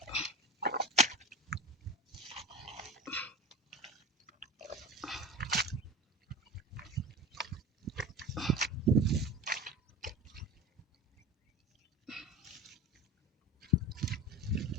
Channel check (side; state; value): both; normal; correlation 0.33